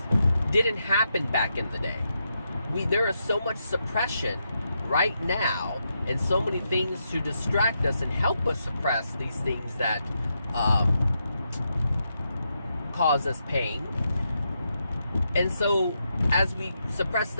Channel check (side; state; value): both; inverted; correlation -0.83